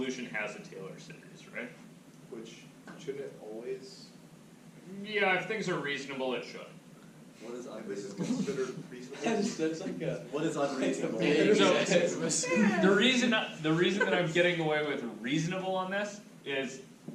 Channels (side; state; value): both; identical; correlation 1.00